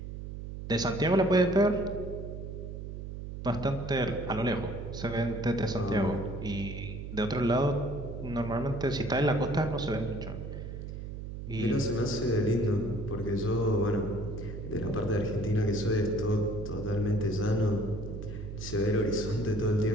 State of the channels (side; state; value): right; noise; hum, 8 dB below the sound